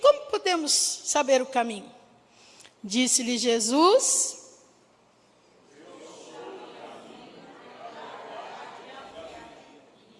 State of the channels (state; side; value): identical; both; correlation 1.00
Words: podemos saber o caminho? Disse-lhe Jesus,